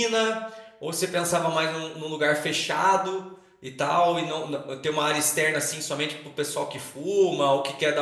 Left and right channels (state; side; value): identical; both; correlation 1.00